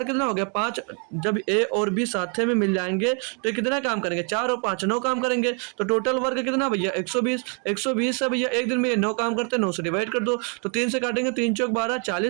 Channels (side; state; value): left; quieter; 38.1 dB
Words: कितना हो गया, 5। जब ए और बी साथ में मिल जाएंगे तो कितना काम करेंगे, 4 और 5 9 काम करेंगे। तो टोटल वर्क कितना भैया 120 से भैया एक दिन में ये 9 काम करते हैं, 9 से डिवाइड कर दो, तो 3 से काटेंगे, 3 × 4 12,